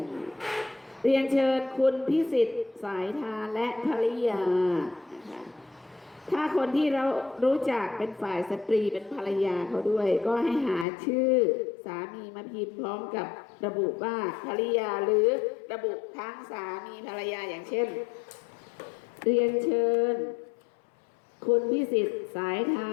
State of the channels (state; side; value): drops out; right; at 10.9 s